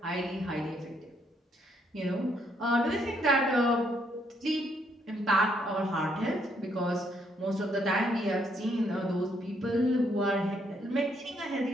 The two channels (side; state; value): both; normal; correlation 0.72